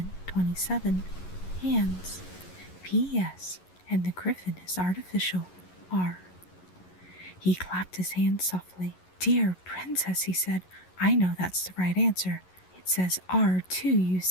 hands, P.S., and the griffin is artificial, R." He clapped his hands softly. "Dear princess," he said, "I know that's the right answer. It says R too, you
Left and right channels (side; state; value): right; late; 11 ms